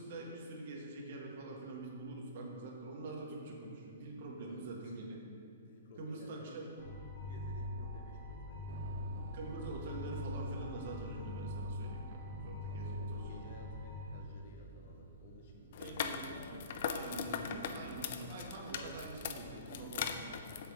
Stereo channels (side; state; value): both; inverted; correlation -0.37